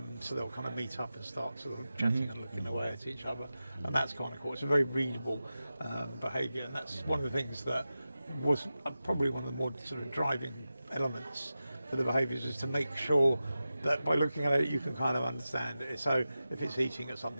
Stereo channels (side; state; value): both; inverted; correlation -0.93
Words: so they'll kind of meet up and start sort of chatting and looking away at each other, and that's kind of cool. It's a very readable behaviour, and that's one of the things that was probably one of the more sort of driving elements for the behaviours is to make sure that by looking at it you can kind of understand it. So if it's eating at